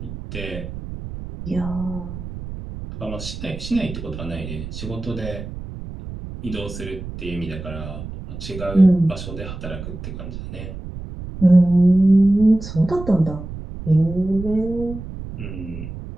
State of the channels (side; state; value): right; noise; rumble, 10 dB below the sound